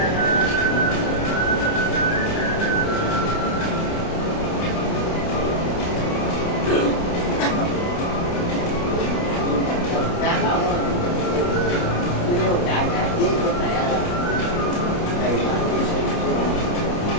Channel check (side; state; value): right; late; 29 ms